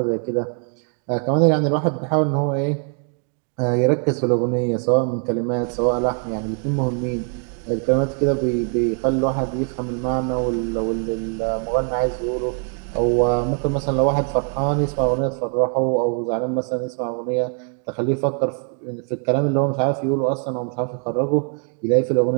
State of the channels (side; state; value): left; quieter; 39.9 dB